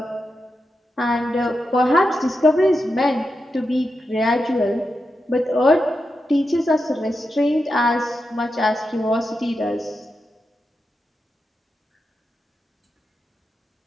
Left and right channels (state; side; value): normal; both; correlation 0.88